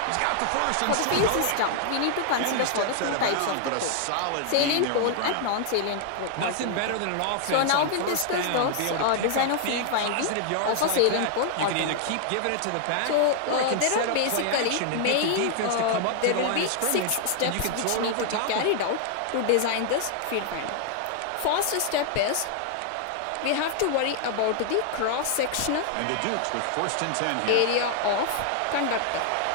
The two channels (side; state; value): both; different; correlation 0.00